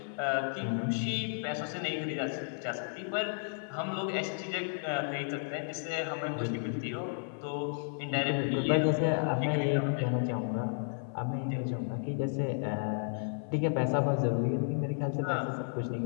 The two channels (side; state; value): right; silent; 56 dB below the other